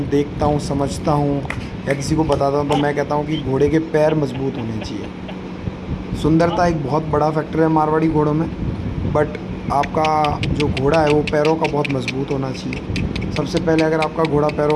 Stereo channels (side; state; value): both; identical; correlation 1.00